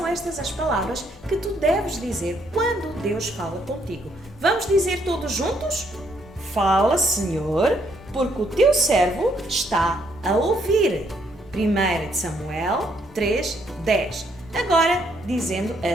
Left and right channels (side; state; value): both; normal; correlation 0.71